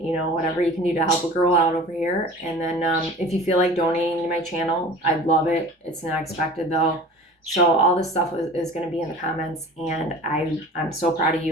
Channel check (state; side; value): normal; both; correlation 0.41